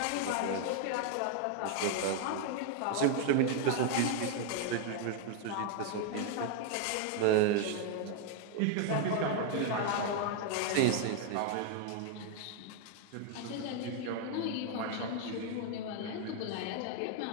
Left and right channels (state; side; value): different; both; correlation 0.00